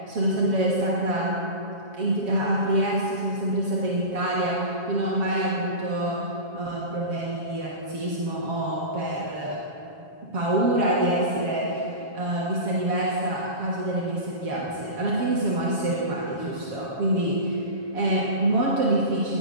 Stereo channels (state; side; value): late; left; 7.2 ms